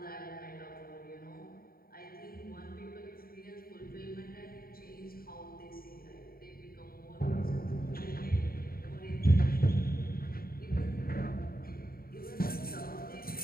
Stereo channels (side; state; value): right; late; 0.43 ms